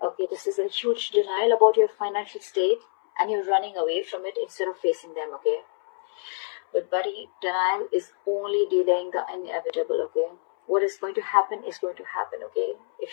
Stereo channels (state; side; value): silent; right; 61 dB below the other